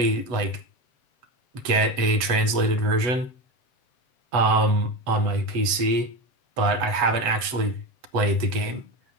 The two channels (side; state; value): left; late; 8.1 ms